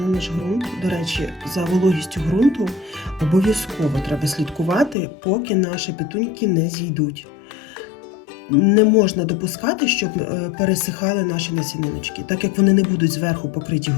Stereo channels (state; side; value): drops out; right; at 5.0 s